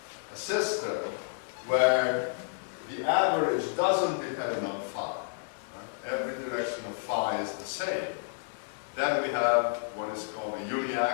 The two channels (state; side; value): silent; right; digital silence